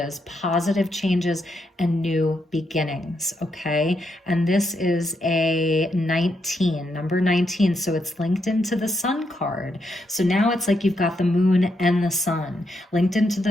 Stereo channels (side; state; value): both; normal; correlation 0.80